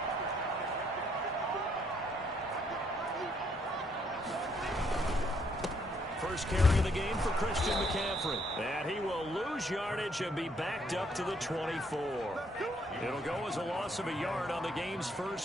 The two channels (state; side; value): normal; both; correlation 0.70